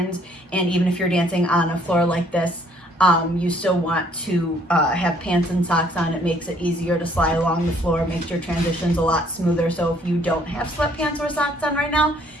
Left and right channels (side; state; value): both; normal; correlation 0.62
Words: And even if you're dancing on a floor like this, you still want to have pants and socks on. It makes it easier to slide along the floor, makes your transitions a lot smoother. So if you don't have sweatpants or socks on right now,